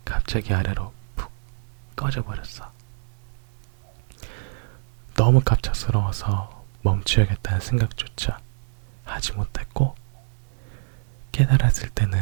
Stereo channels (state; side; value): silent; left; digital silence